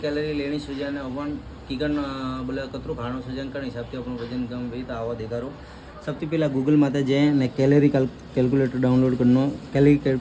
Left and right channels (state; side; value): identical; both; correlation 1.00